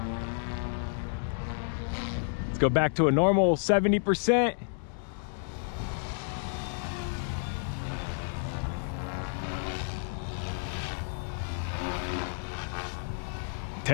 Let's go back to a normal 70%.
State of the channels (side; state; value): right; silent; digital silence